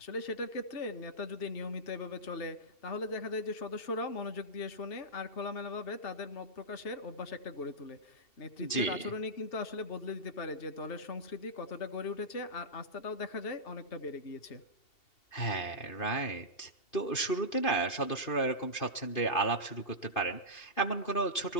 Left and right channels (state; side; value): late; right; 2.7 ms